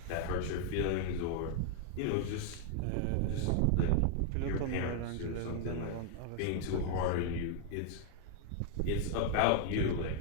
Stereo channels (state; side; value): different; both; correlation 0.00